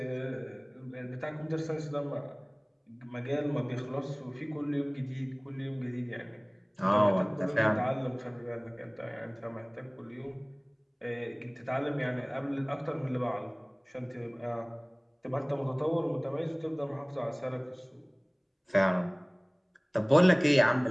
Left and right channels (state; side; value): identical; both; correlation 1.00